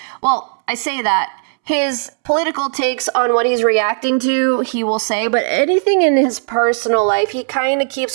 well, I say that. His political takes on what he's reacting to, he will say, but anything in his personal life, he kind of keeps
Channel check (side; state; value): left; silent; 68 dB below the other